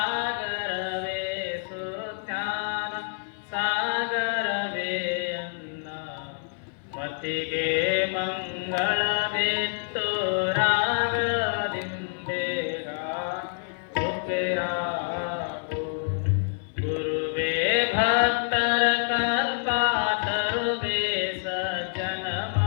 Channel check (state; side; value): silent; right; 58 dB below the other